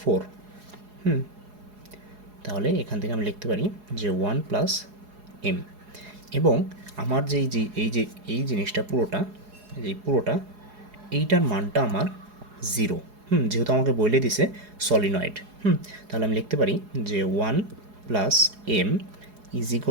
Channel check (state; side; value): late; left; 4.8 ms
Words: 4। তাহলে এখান থেকে আমি লিখতে পারি যে 1 প্লাস এম, এবং আমার যে এই জিনিসটা পুরোটা, এইটার মানটা আমার 0। যেহেতু আমাকে বলে দিছে সলিনয়েড, তাহলে আমি লিখতে পারি যে 1 plus M is